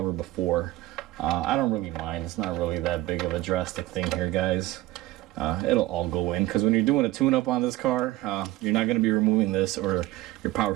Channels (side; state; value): left; quieter; 17.0 dB